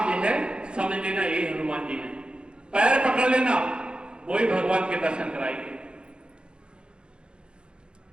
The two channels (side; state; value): left; late; 0.053 ms